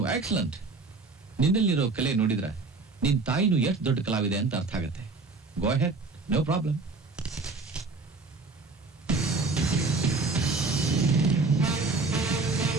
excellent. ನಿನ್ನಲ್ಲಿರೋ ಕಲೆ ನೋಡಿದ್ರೆ ನಿನ್ ತಾಯಿನೂ ಎಷ್ಟು ದೊಡ್ಡ ಕಲಾವಿದೆ ಅಂತ ಅರ್ಥ ಆಗುತ್ತೆ. Go ahead, no problem.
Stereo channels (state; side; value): quieter; left; 3.8 dB